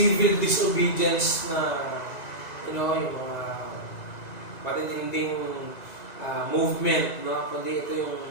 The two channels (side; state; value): right; late; 2.0 ms